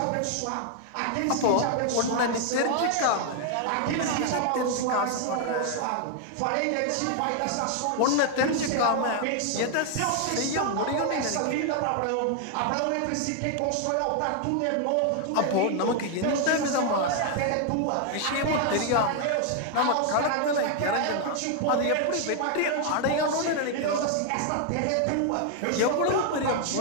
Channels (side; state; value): both; different; correlation 0.00